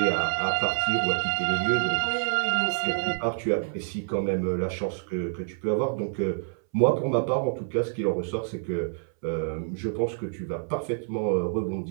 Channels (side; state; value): left; silent; 60 dB below the other